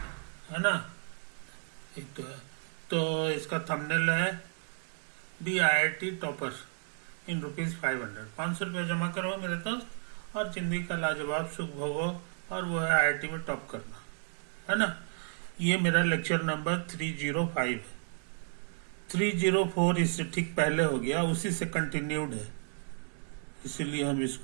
है ना। ये तो है। तो इसका थंबनेल है B I I T topper in ₹500। 500 रुपये जमा करो मेरे दोस्त और जिंदगी का लाजवाब सुख भोगो। और वो है IIT में टॉप करना, है ना। ये मेरा लेक्चर नंबर 305 है। 304 इससे ठीक पहले हो गया, उसी से कंटिन्यूड है, इसीलिए हम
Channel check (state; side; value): silent; left; 56 dB below the other